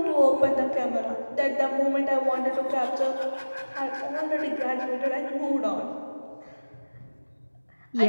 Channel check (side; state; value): both; inverted; correlation -1.00